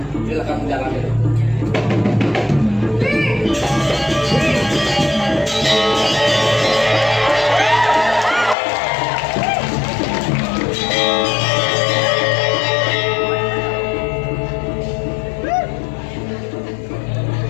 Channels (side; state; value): right; drops out; at 8.6 s